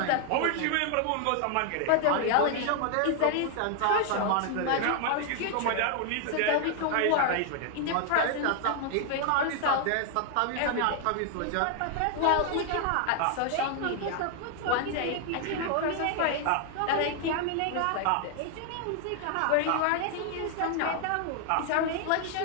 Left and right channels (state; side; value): different; both; correlation 0.00